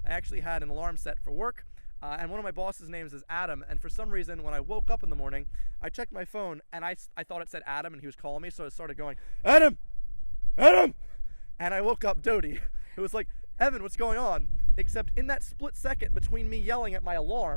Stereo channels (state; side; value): inverted; both; correlation -1.00